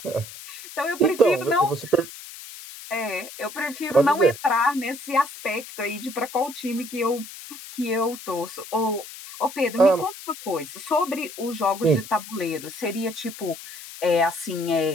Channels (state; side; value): noise; left; hiss, 14 dB below the sound